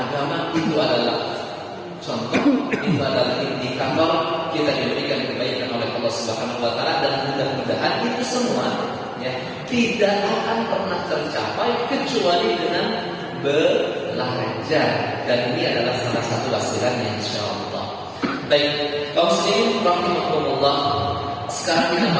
itu adalah contoh, itu adalah indikator kita diberikan kebaikan oleh Allah Subhanahu wa taala, dan mudah-mudahan itu semua ya tidak akan pernah tercapai kecuali dengan belajar, dan ini adalah salah satu wasilannya insyaallah. Baik, kaum muslimin rahimakumullah, sekarang kita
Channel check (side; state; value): both; identical; correlation 1.00